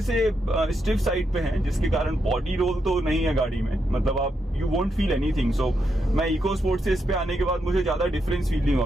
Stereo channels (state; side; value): normal; both; correlation 0.82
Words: से स्टिफ साइड पे हैं, जिसके कारण बॉडी रोल तो नहीं है गाड़ी में, मतलब आप यू वोंट फील एनीथिंग। सो मैं इको स्पोर्ट से इस पे आने के बाद मुझे ज्यादा डिफरेंस फील नहीं हुआ,